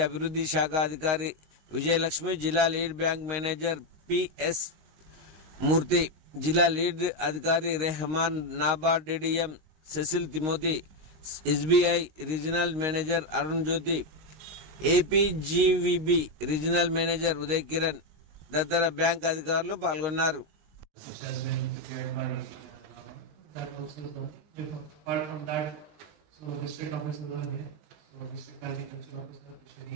అభివృద్ధి శాఖ అధికారి విజయలక్ష్మి, జిల్లా lead bank manager PS Murthy, జిల్లా లీడ్ అధికారి Rehman, NABARD DDM Cecil Timothy, SBI regional manager Arun Jyothi, APGVB regional manager Uday Kiran తదితర బ్యాంక్ అధికారులు పాల్గొన్నారు.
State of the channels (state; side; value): late; left; 19 ms